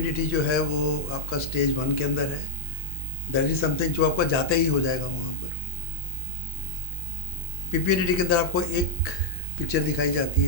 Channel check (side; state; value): both; normal; correlation 0.01